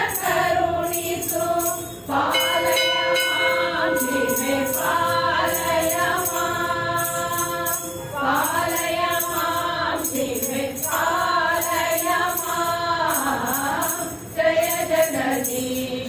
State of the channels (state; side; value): identical; both; correlation 1.00